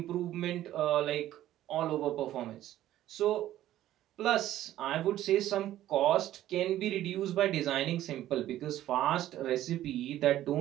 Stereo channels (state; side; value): quieter; left; 13.3 dB